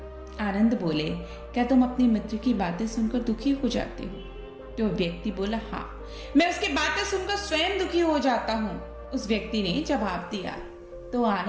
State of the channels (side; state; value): both; identical; correlation 1.00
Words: आनंद बोले, क्या तुम अपने मित्र की बातें सुनकर दुखी हो जाते हो? तो व्यक्ति बोला, हाँ, मैं उसकी बातें सुनकर स्वयं दुखी हो जाता हूँ। उस व्यक्ति ने जवाब दिया। तो